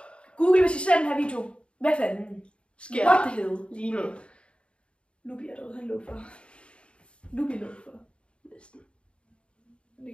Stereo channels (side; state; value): right; late; 0.057 ms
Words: Google, hvis I ser den her video, hvad fanden sker What the hell? Lige nu. Lubi er derude, han lå for. Lubi lå for. Næsten. Det